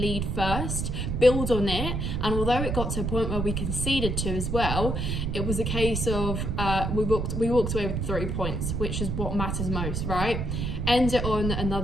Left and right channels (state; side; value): noise; right; rumble, 1 dB below the sound